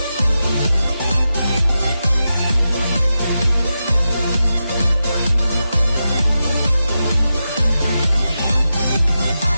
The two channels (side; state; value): both; inverted; correlation -0.89